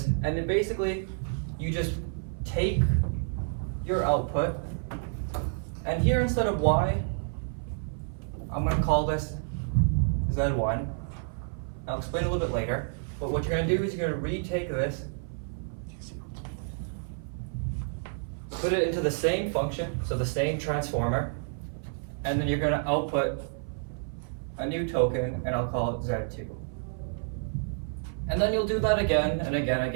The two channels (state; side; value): silent; left; 57 dB below the other